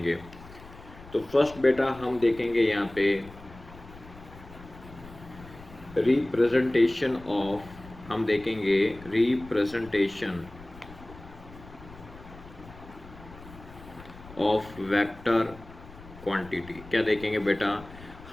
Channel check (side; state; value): left; noise; rumble, 18 dB below the sound